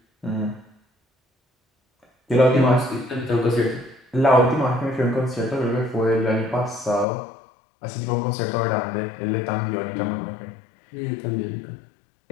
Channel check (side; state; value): right; drops out; at 7.1 s